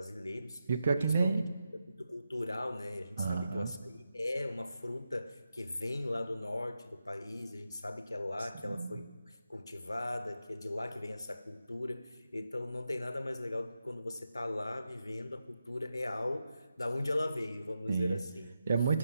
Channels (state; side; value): inverted; both; correlation -0.88